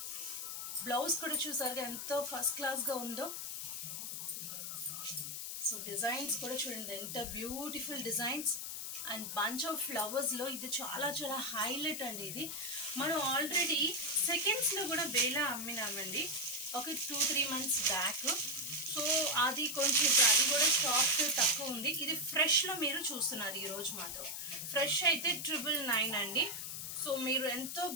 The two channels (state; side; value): noise; left; hiss, 5 dB below the sound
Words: బ్లౌజ్ కూడా చూసారుగా ఎంతో ఫస్ట్ క్లాస్గా ఉందో. సో డిజైన్స్ కూడా చూడండి ఎంత beautiful designs and bunch of ఫ్లవర్స్లో ఇది చాలా చాలా హైలైట్ అండి. ఇది మనం ఆల్రెడీ సెకండ్స్లో కూడా బేలా అమ్మినామండి ఒక 2-3 months బ్యాక్. సో అది కొంచెం అది కూడా స్టాక్ తక్కువ ఉంది. ఇది ఫ్రెష్లో మీరు చూస్తున్నారు ఈరోజు మాత్రం. ఫ్రెష్ అయితే 999 అండి. సో మీరు ఎంతో